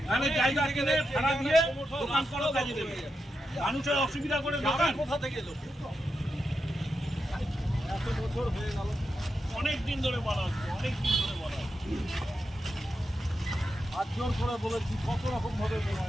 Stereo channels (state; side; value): normal; both; correlation 0.87